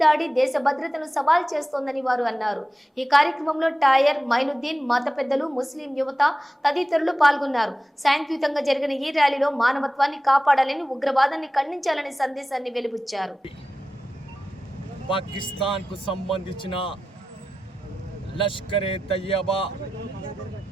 దాడి దేశ భద్రతను సవాల్ చేస్తోందని వారు అన్నారు. ఈ కార్యక్రమంలో టైర్ మైనుద్దీన్, మత పెద్దలు, ముస్లిం యువత తదితరులు పాల్గొన్నారు. శాంతియుతంగా జరిగిన ఈ ర్యాలీలో మానవత్వాన్ని కాపాడాలని, ఉగ్రవాదాన్ని ఖండించాలని సందేశాన్ని వెలుబుచ్చారు. పాకిస్తాన్ కు సంబంధించిన లష్కరే తయ్యబా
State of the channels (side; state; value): both; normal; correlation 0.93